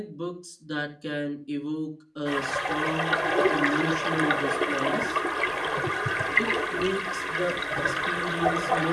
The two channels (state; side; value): identical; both; correlation 1.00